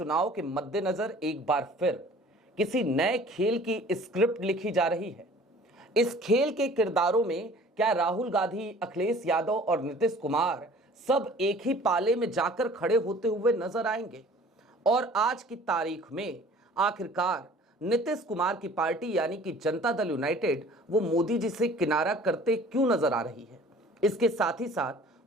के मद्देनजर एक बार फिर किसी नए खेल की स्क्रिप्ट लिखी जा रही है? इस खेल के किरदारों में क्या राहुल गांधी, अखिलेश यादव और नीतीश कुमार सब एक ही पाले में जाकर खड़े होते हुए नजर आएंगे? और आज की तारीख में आखिरकार नीतीश कुमार की पार्टी यानी कि जनता दल यूनाइटेड वो मोदी जी से किनारा करते क्यों नजर आ रही है? इसके साथ ही साथ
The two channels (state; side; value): normal; both; correlation 0.49